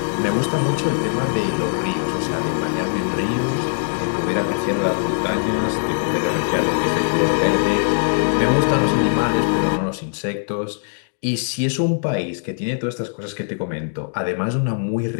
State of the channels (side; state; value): right; silent; digital silence